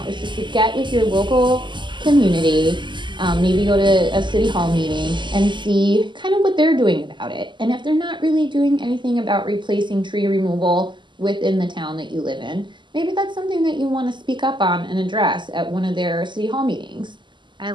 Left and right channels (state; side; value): late; left; 0.22 ms